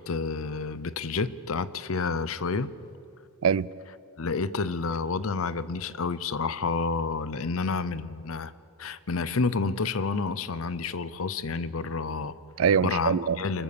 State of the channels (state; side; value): normal; both; correlation 0.04